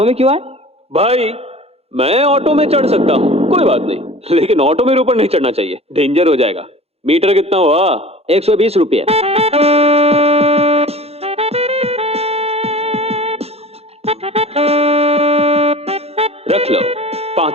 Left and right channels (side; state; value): left; late; 0.29 ms